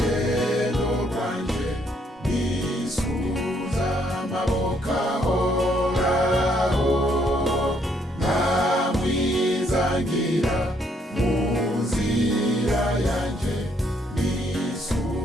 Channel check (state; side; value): normal; both; correlation 0.70